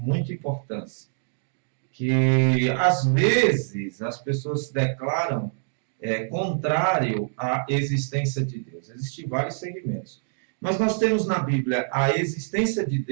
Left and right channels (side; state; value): left; silent; digital silence